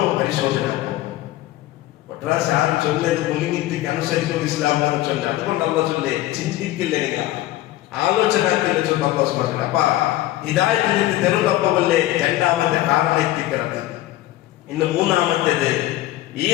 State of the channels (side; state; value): right; quieter; 15.5 dB